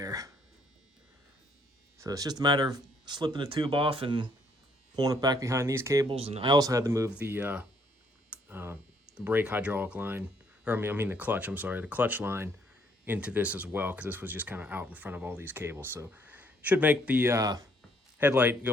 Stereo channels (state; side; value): normal; both; correlation 0.67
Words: So it's just a matter of slipping the tube off and pulling it back behind these cables. And I also had to move the brake hydraulic line, or I mean the clutch, the clutch line into this as well, because this was just kind of out in front of all these cables. So should make the headlight